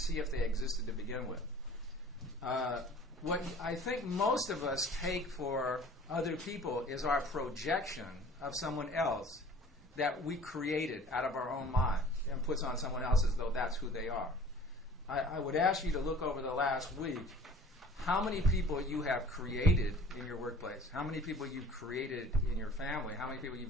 if they existed to begin with. What I think most of us take for other people is our projection of someone else that we created out of our own mind and puts on someone else as though that's who they are. I would ask you to look over the last week how many people you have created in your workplace, how many people you've created in your family, how many people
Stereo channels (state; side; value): normal; both; correlation 0.47